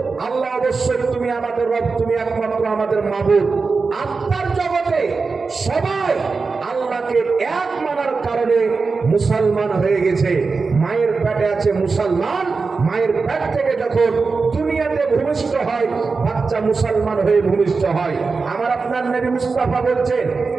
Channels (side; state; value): left; quieter; 4.4 dB